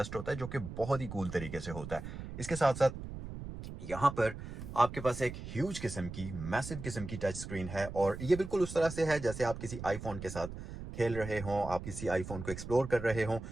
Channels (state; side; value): noise; right; rumble, 9 dB below the sound